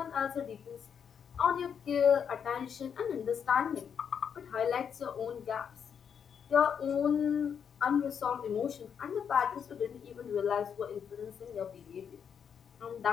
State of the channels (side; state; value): right; quieter; 7.5 dB